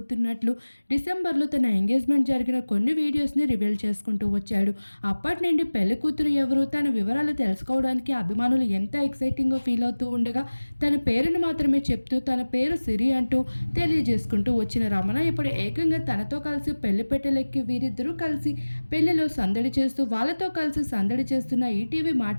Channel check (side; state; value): both; inverted; correlation -1.00